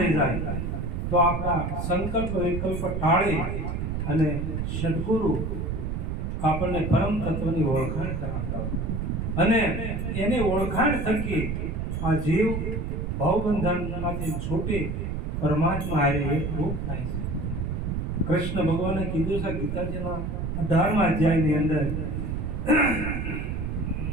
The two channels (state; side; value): noise; right; rumble, 3 dB below the sound